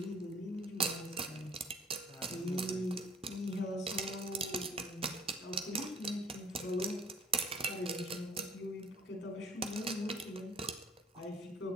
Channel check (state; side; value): normal; both; correlation 0.54